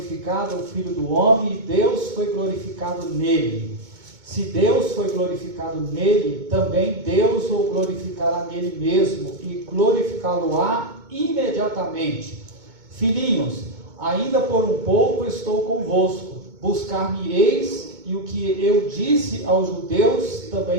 o Filho do Homem, e Deus foi glorificado nele. Se Deus foi glorificado nele, também Deus o glorificará nele mesmo, e glorificá-lo-á imediatamente. Filhinhos, ainda por um pouco estou convosco, buscar-me-eis, e o que eu disse aos judeus,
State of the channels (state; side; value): late; left; 2.2 ms